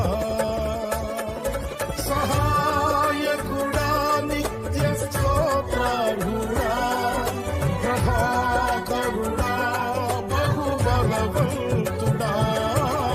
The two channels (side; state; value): both; identical; correlation 1.00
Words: సహాయకుడా నిత్య స్తోత్రార్హుడా, ప్రభాకరుడా బహు బలవంతుడా,